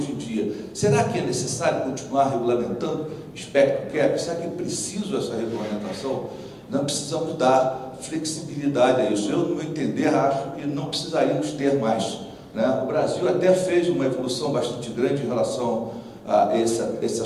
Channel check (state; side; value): identical; both; correlation 1.00